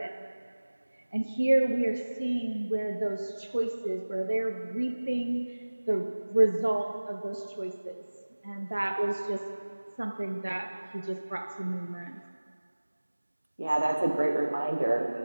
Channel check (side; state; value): both; inverted; correlation -1.00